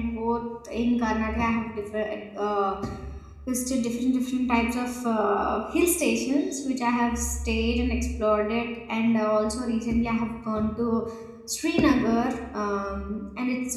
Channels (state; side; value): identical; both; correlation 1.00